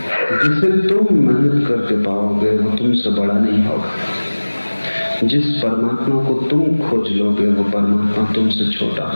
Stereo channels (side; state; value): both; inverted; correlation -1.00